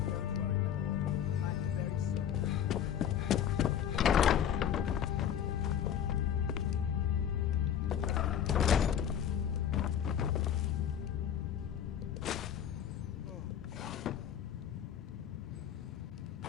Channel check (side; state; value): right; quieter; 9.4 dB